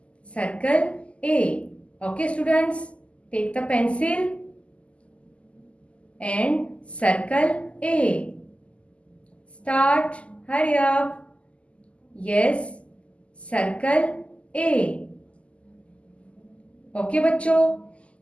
Circle A. Okay, students. Take the pencil and circle A. Start. Hurry up. Yes. Circle A. Okay, बच्चों.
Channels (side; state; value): right; late; 0.058 ms